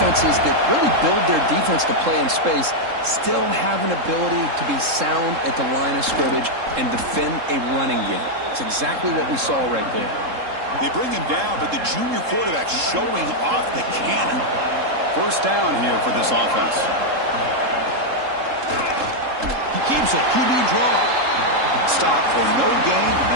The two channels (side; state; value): left; late; 3.7 ms